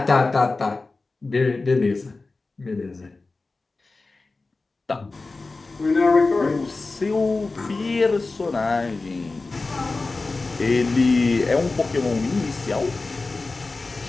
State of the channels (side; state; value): right; quieter; 3.6 dB